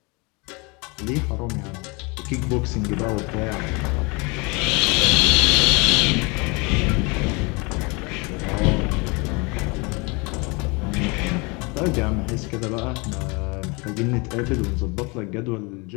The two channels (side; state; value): right; quieter; 28.8 dB